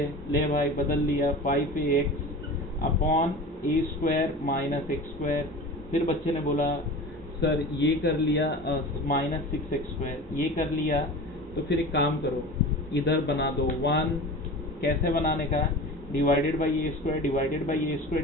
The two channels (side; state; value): both; normal; correlation 0.34